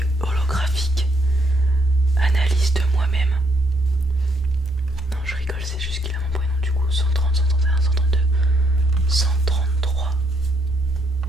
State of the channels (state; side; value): normal; both; correlation 0.73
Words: holographique. Analyse de moi-même. Non, je rigole, c'est juste qu'il a mon prénom. Du coup, 130, 131, 132, 133.